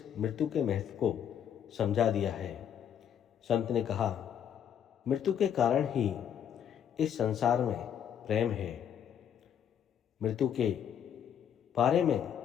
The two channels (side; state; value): right; quieter; 9.0 dB